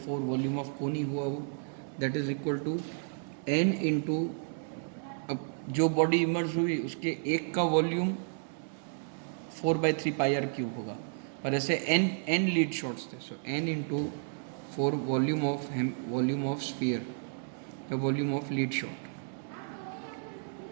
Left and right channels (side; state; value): left; silent; 56 dB below the other